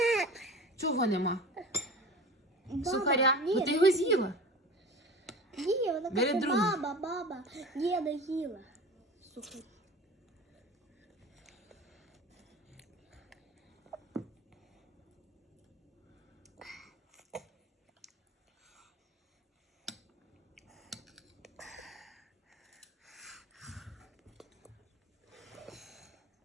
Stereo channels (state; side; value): normal; both; correlation 0.36